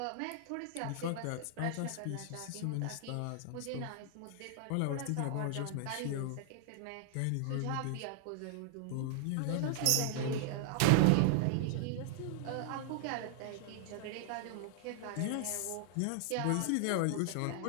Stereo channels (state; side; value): different; both; correlation -0.01